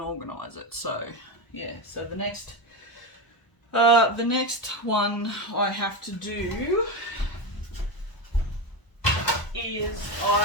it. So yeah, so the next one I have to do is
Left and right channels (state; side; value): late; right; 1.0 ms